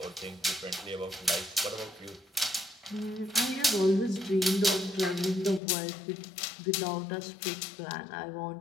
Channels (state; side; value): drops out; right; at 5.6 s